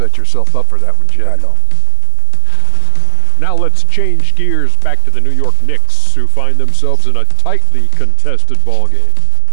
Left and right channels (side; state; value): both; different; correlation 0.00